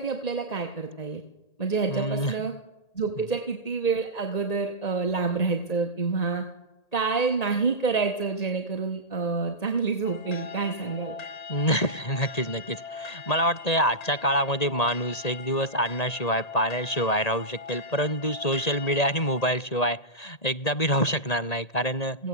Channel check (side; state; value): right; late; 1.8 ms